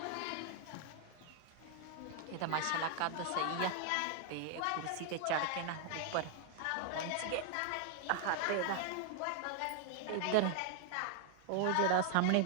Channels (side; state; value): both; different; correlation 0.00